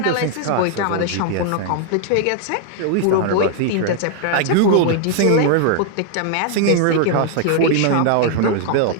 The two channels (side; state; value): both; different; correlation 0.00